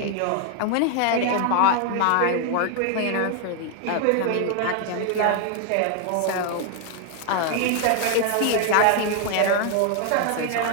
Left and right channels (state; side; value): different; both; correlation 0.00